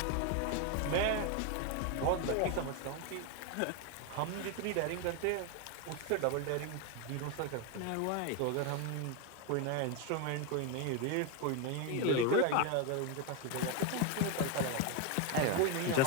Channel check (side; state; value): both; different; correlation 0.02